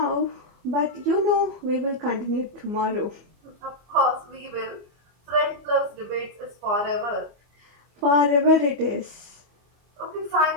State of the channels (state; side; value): late; left; 24 ms